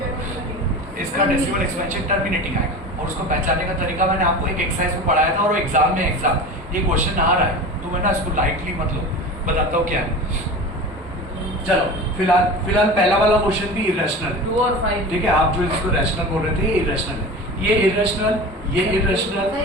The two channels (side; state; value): both; normal; correlation 0.32